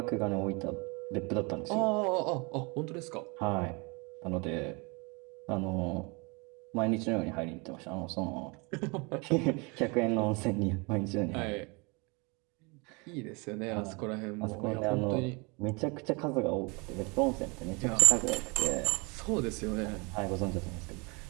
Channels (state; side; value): quieter; left; 29.3 dB